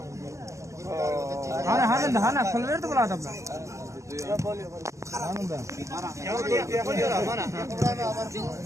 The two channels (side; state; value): left; late; 0.15 ms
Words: Hana kıl verdi bu adamlar. Hanım ben.